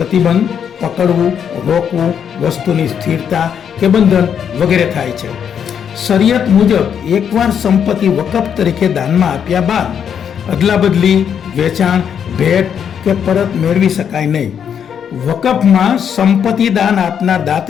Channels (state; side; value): quieter; right; 8.1 dB